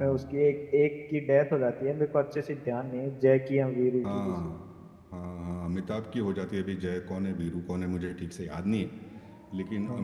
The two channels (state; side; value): identical; both; correlation 1.00